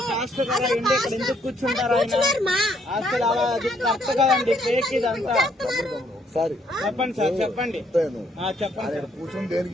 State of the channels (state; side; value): normal; both; correlation 0.69